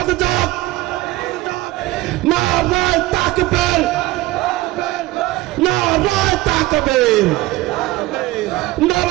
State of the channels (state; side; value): quieter; left; 18.4 dB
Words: যাক। নারায়ে তাকবীর, নারায়ে তাকবীর,